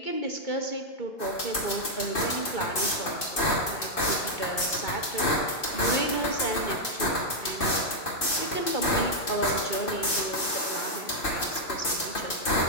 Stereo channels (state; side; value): late; right; 2.6 ms